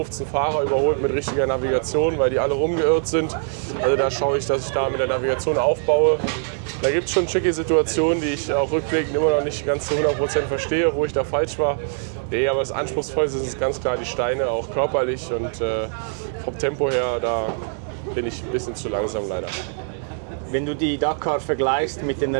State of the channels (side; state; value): left; silent; digital silence